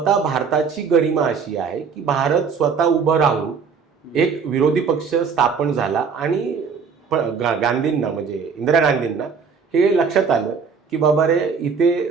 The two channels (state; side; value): quieter; left; 5.8 dB